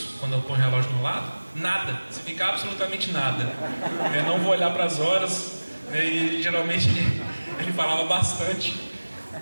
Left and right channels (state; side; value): inverted; both; correlation -1.00